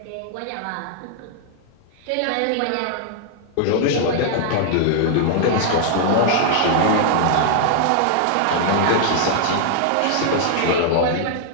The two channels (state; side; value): different; both; correlation -0.01